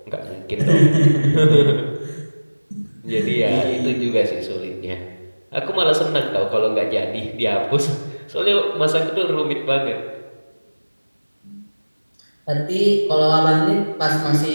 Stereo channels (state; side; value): inverted; both; correlation -1.00